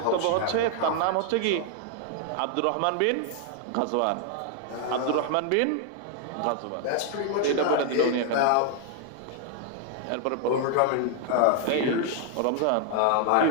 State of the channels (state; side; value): different; both; correlation 0.00